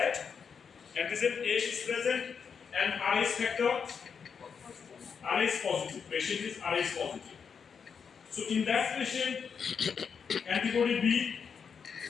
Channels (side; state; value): right; quieter; 6.4 dB